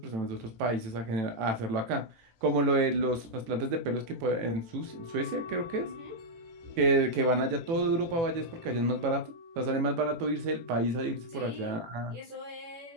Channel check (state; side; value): late; left; 18 ms